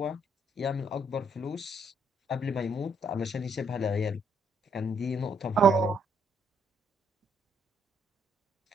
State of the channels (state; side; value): normal; both; correlation 0.71